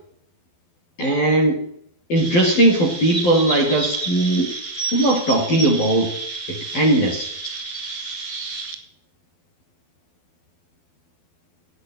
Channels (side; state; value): right; late; 12 ms